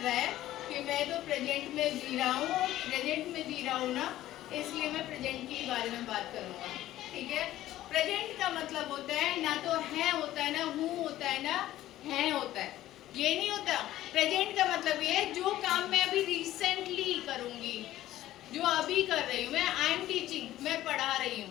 है कि मैं तो प्रेजेंट में जी रहा हूँ, प्रेजेंट में जी रहा हूँ ना, इसलिए मैं प्रेजेंट के बारे में बात करूँगा, ठीक है। प्रेजेंट का मतलब होता है ना तो है होता है, ना हूँ होता है, ना है होता है, ये नहीं होता। प्रेजेंट का मतलब ये है जो काम मैं अभी रिसेंटली करूँगी, जो अभी कर रही हूँ मैं, आई एम टीचिंग, मैं पढ़ा रही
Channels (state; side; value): quieter; right; 14.3 dB